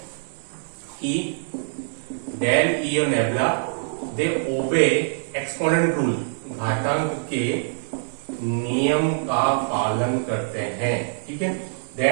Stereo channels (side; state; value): left; silent; 62 dB below the other